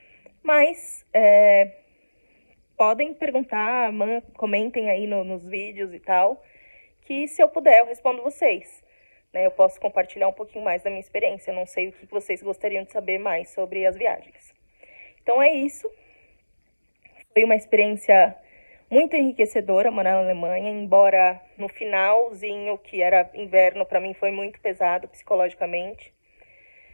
mas podem perguntar, comentem aí nos vídeos e tal, que se eu puder eu respondo vocês. Né? Eu posso compartilhar um pouquinho mais da minha experiência, eu não sei o que vocês gostariam de saber mais sobre as viagens. Então é isso. Foi uma experiência muito enriquecedora morar na Alemanha, embora no finalzinho, que era inverno, para mim foi muito pesado psicologicamente.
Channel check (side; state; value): both; inverted; correlation -1.00